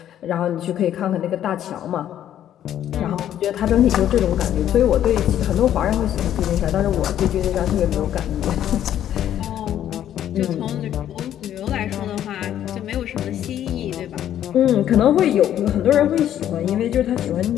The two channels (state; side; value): quieter; right; 11.0 dB